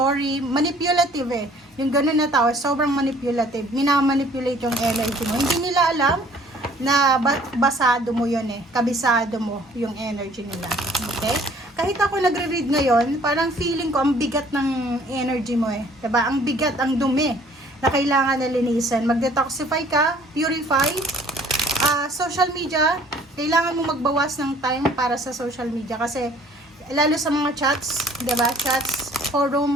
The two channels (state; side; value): normal; both; correlation 0.56